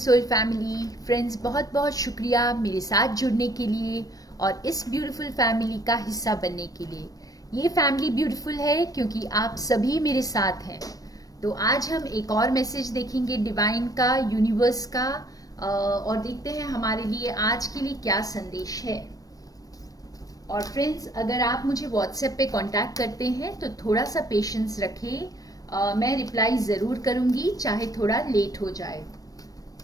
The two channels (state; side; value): late; right; 0.18 ms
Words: family friends, बहुत बहुत शुक्रिया मेरे साथ जुड़ने के लिए और इस ब्यूटीफुल फैमिली का हिस्सा बनने के लिए। ये फैमिली ब्यूटीफुल है क्योंकि आप सभी मेरे साथ हैं। तो आज हम एक और मैसेज देखेंगे डिवाइन का, यूनिवर्स का, और देखते हैं हमारे लिए आज के लिए क्या संदेश है। और फ्रेंड्स, अगर आप मुझे व्हाट्सएप पे कांटेक्ट करते हैं तो थोड़ा सा पेशेंस रखें। मैं रिप्लाई ज़रूर करूँगी, चाहे थोड़ा लेट हो जाए।